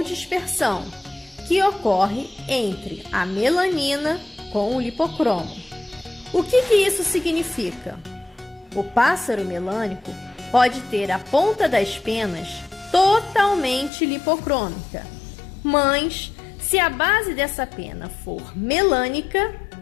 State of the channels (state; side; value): drops out; right; at 13.9 s